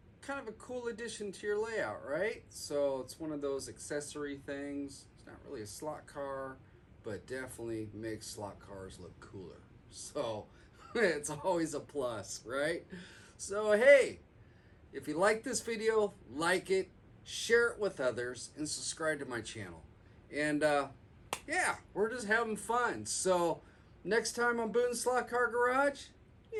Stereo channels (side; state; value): both; identical; correlation 1.00